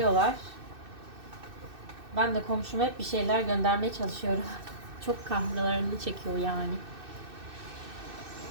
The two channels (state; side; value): late; left; 2.6 ms